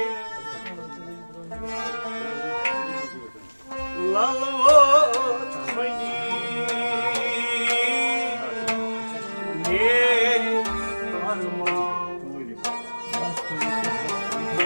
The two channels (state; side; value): inverted; both; correlation -1.00